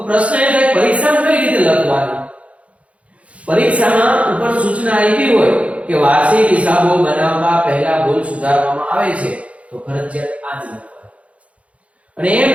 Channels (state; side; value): late; left; 0.064 ms